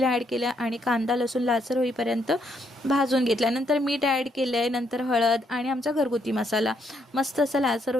ॲड केलं आणि कांदा लसूण लालसर होईपर्यंत भाजून घेतला। नंतर मीठ ॲड केले, नंतर हळद आणि आमचा घरगुती मसाला मस्त असं लालसर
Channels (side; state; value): both; normal; correlation 0.74